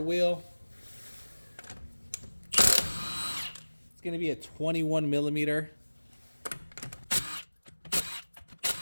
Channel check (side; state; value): both; inverted; correlation -1.00